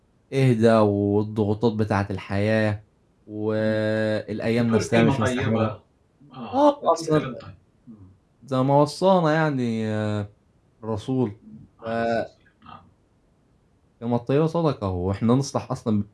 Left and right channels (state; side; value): identical; both; correlation 1.00